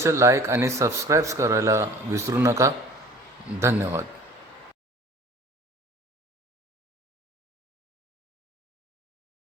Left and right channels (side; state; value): both; normal; correlation 0.47